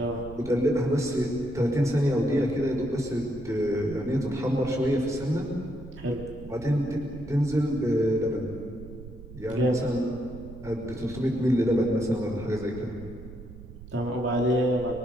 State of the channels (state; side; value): noise; right; rumble, 15 dB below the sound